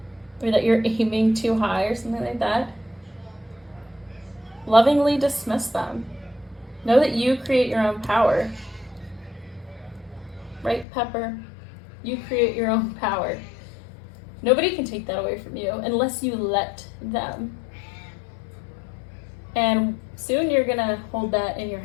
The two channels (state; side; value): drops out; right; at 10.9 s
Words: or that you're aiming too high or something like that, lovingly dismiss them. Know that you create your own power. Right, Pepper? You create your own power. Nobody can take that away from you unless you let them. And soon you're going to hold that in your